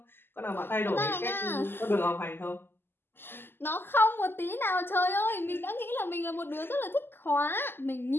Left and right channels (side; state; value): right; late; 0.10 ms